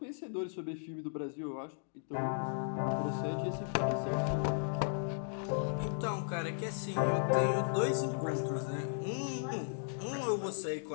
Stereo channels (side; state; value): right; silent; digital silence